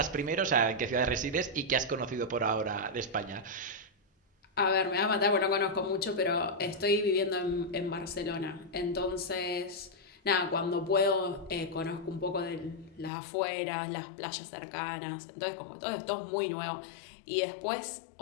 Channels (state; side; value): drops out; right; at 13.1 s